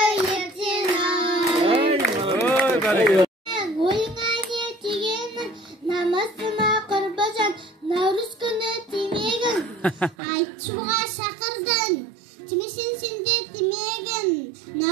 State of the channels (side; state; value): left; drops out; at 10.2 s